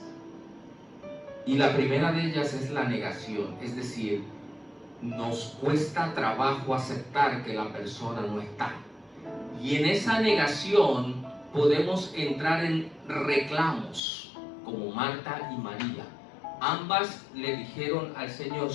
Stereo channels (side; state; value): right; drops out; at 14.0 s